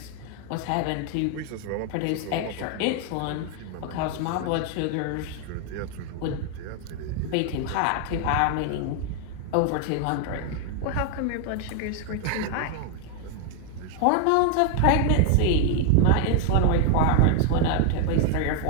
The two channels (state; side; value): different; both; correlation 0.00